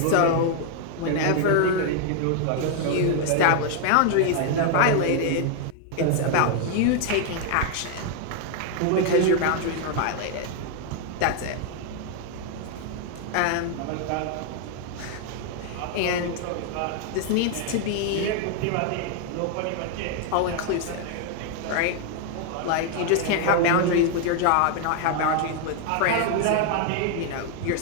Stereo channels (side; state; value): both; different; correlation 0.00